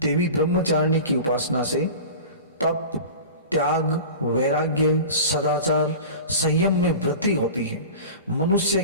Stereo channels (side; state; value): both; inverted; correlation -0.35